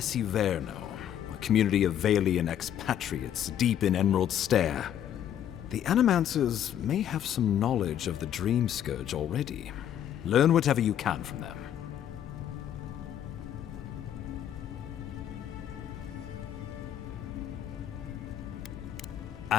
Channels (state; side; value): quieter; right; 10.3 dB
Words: a community of Valian expatriates deep in Emerald Stair. The Animancers may have some knowledge of the Dream Scourge already. Learn whatever you can from them.